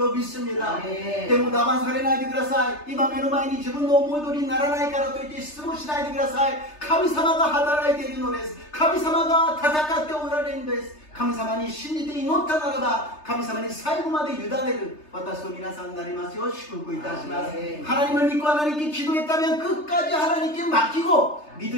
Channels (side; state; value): right; late; 3.3 ms